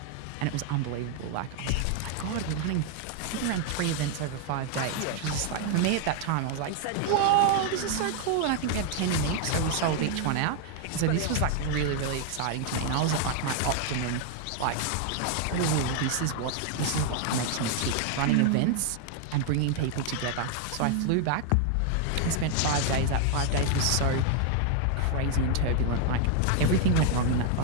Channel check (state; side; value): different; both; correlation 0.00